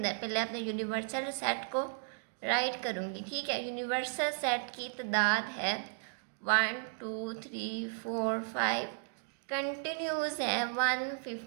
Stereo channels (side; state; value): left; silent; digital silence